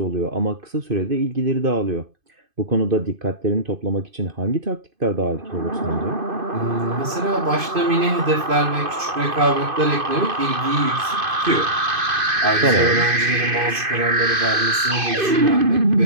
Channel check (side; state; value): left; late; 2.5 ms